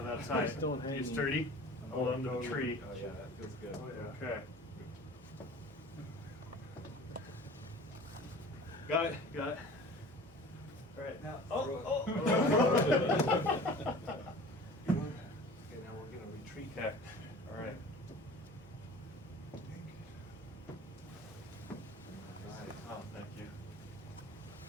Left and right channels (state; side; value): normal; both; correlation 0.42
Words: on to that tight. Still hanging. You sturdy? Hold on to the tree. Oh yeah, that feels good. Oh, yeah. Okay. Got it, got it. All right, now, Okay, oh. Okay, now we're gonna retreat. Okay, all right. Right. Oh, thank you.